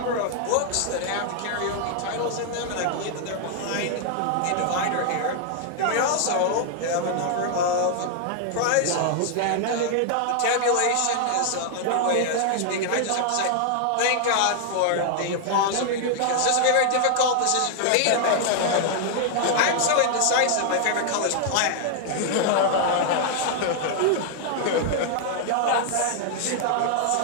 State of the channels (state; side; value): different; both; correlation 0.00